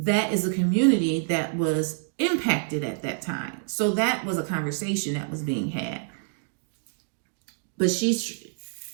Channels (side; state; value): left; silent; digital silence